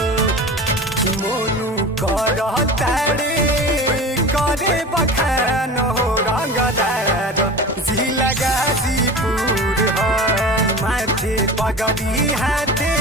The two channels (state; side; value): normal; both; correlation 0.34